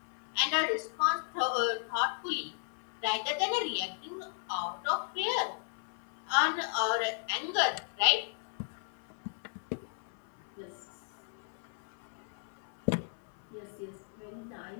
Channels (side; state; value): right; silent; 54 dB below the other